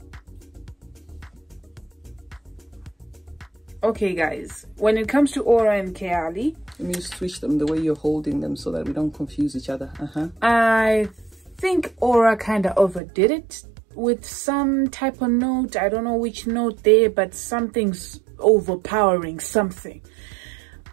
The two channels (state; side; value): drops out; left; at 13.0 s